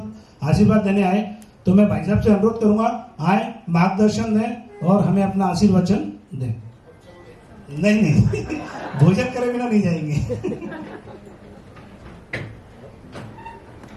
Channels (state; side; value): identical; both; correlation 1.00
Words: आशीर्वाद देने आए। तो मैं भाई साहब से अनुरोध करूंगा, आए, मार्गदर्शन दें और हमें अपना आशीर्वचन दें। नहीं भोजन करे बिना नहीं जाएंगे।